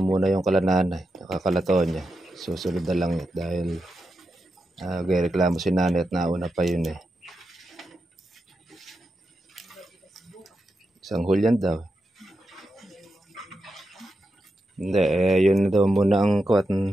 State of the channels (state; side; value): normal; both; correlation 0.88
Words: muna yung kalananay, nakakalaton niya. Susunod na lang yun dahil reklamo si nanay at nauna pa yun Isang hulyan daw. Hindi, yun daw muna ang kuwat.